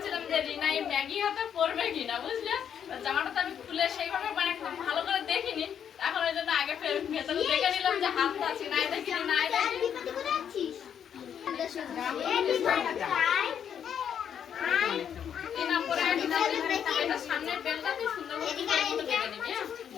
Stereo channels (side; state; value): right; quieter; 8.5 dB